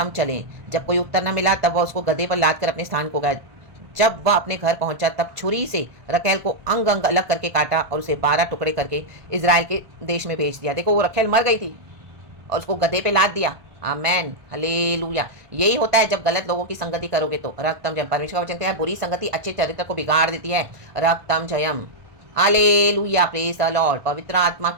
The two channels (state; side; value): late; left; 1.5 ms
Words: चलें। जब कोई उत्तर न मिला तब वह उसको गधे पर लाद कर अपने स्थान को गया। जब वह अपने घर पहुंचा तब छुरी से रखेल को अंग अंग अलग करके काटा और उसे 12 टुकड़े करके इजराइल के देश में भेज दिया। देखो वो रखेल मर गई थी और उसको गधे पे लाद दिया। आमेन, हालेलुया। यही होता है जब गलत लोगों की संगति करोगे तो। रक्तम जयम। परमेश्वर का वचन कहता है बुरी संगति अच्छे चरित्र को बिगाड़ देती है। रक्तम जयम, हालेलुया, प्रेज द लॉर्ड। पवित्र आत्मा